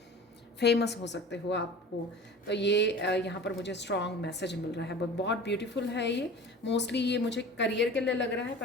फेमस हो सकते हो आपको। तो ये यहाँ पर मुझे स्ट्रॉन्ग मैसेज मिल रहा है, बहुत ब्यूटीफुल है ये। मोस्टली ये मुझे करियर के लिए लग रहा है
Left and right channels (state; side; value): normal; both; correlation 0.39